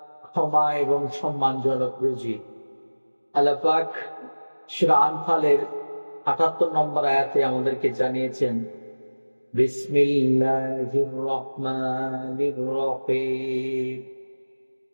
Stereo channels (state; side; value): inverted; both; correlation -1.00